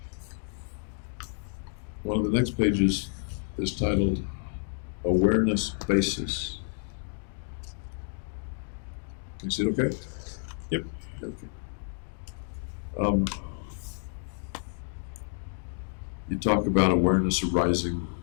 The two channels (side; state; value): right; silent; digital silence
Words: One of the next pages is titled Awareness Basis. Can you see it okay? Yep. Okay. You talk about awareness arising